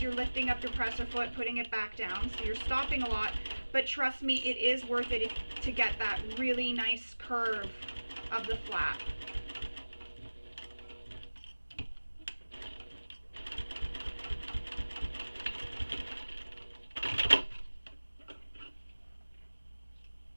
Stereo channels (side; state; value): both; inverted; correlation -1.00